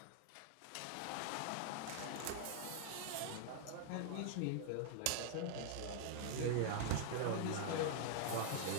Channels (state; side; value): different; both; correlation 0.00